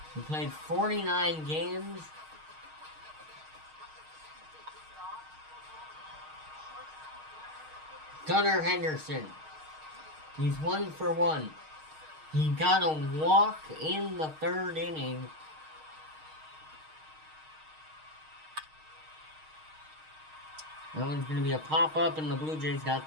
who played 49 games. Gunnar Henderson, he's 1 for 1. He got a walk in the 3rd inning. That one's going to be a pop-up, and the Blue Jays got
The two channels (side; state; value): left; late; 6.4 ms